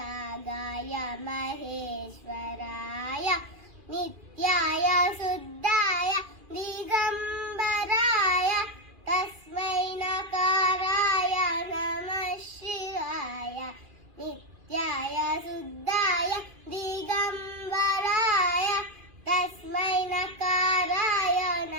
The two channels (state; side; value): late; left; 2.4 ms